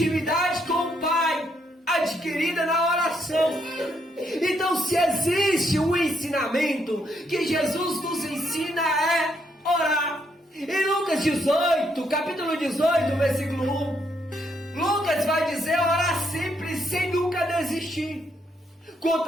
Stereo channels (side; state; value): both; normal; correlation 0.75